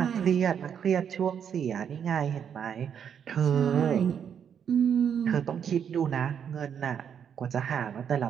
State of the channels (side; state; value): left; quieter; 8.0 dB